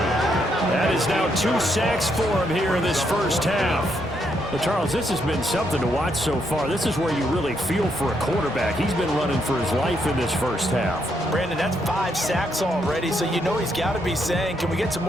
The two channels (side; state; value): both; normal; correlation 0.76